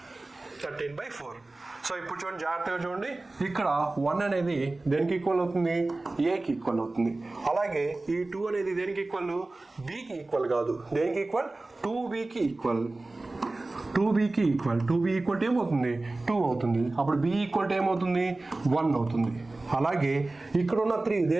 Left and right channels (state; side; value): quieter; left; 3.0 dB